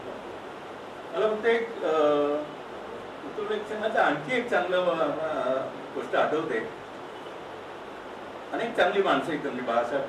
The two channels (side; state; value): both; identical; correlation 1.00